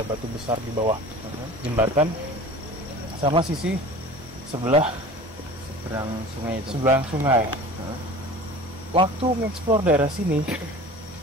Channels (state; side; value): normal; both; correlation 0.40